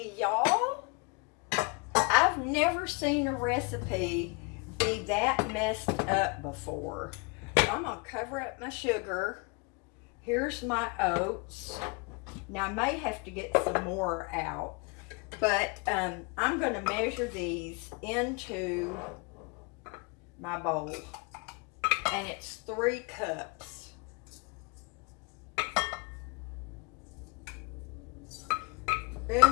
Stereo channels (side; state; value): right; quieter; 30.7 dB